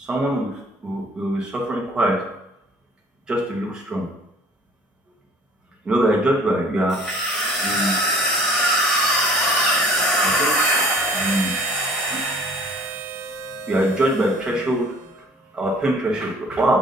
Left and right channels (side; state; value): both; normal; correlation 0.52